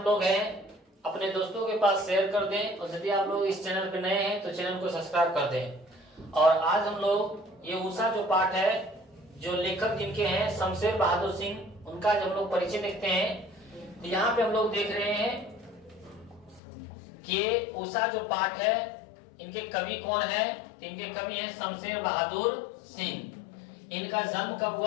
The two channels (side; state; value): right; drops out; at 16.6 s